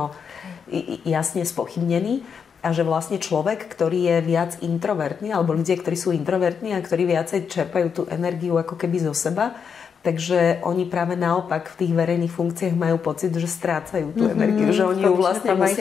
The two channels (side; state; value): right; quieter; 6.6 dB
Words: jasne spochybnení. A že vlastne človek, ktorý je viac introvertný, alebo ľudia, ktorí sú introvertní a ktorí viacej čerpajú tú energiu ako keby zo seba, takže oni práve naopak v tých verejných funkciách majú pocit, že strácajú tú energiu, že oni ju vlastne